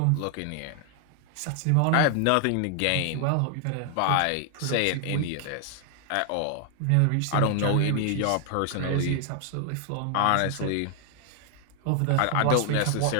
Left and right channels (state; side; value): different; both; correlation 0.00